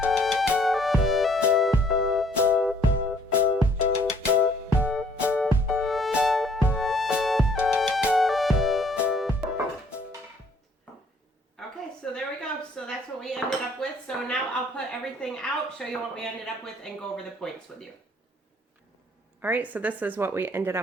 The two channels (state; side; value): normal; both; correlation 0.61